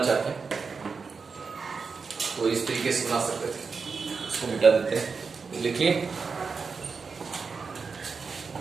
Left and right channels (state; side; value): quieter; left; 5.1 dB